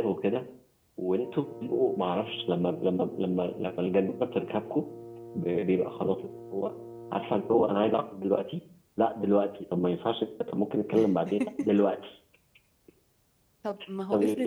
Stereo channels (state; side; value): identical; both; correlation 1.00